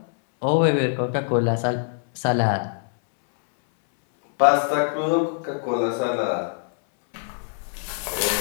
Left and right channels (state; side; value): silent; right; 63 dB below the other